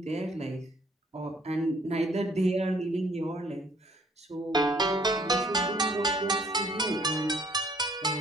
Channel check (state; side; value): normal; both; correlation 0.61